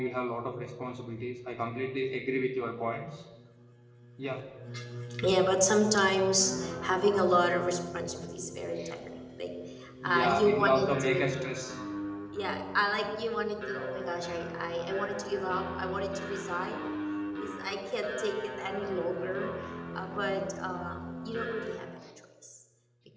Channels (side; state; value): both; identical; correlation 1.00